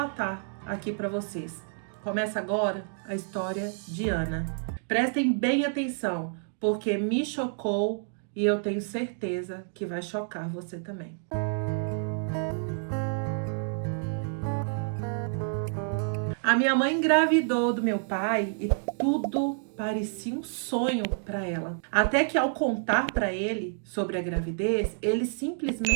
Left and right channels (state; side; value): silent; left; digital silence